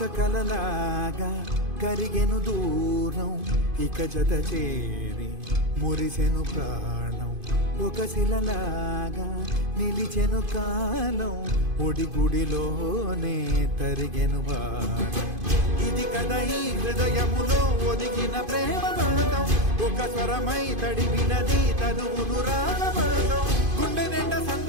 కలలాగా కరిగెను దూరం ఇక జత చేరి మురిసెను ప్రాణం ఒక శిలలాగా నిలిచెను కాలం ఒడిగుడిలోనే తరిగెను భారం ఇది కదా ఈ హృదయములో ఒదిగిన ప్రేమ బంధం ఒక స్వరమై తడివినది తనువును రాగమరణం గుండె నిండా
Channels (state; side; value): late; left; 2.5 ms